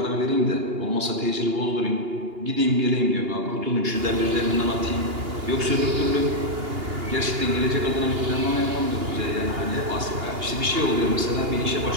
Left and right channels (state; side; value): late; left; 2.8 ms